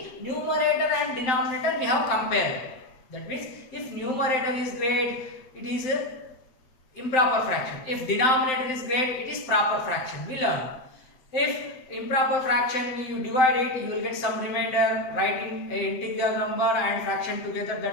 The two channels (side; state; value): right; late; 7.7 ms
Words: numerator and denominator we have compared. That means if numerator is great, it is a improper fraction. If denominator is great, it is proper fraction. We learn. If improper fraction you divide it, you will get some remainder, writing an integer number and fraction together,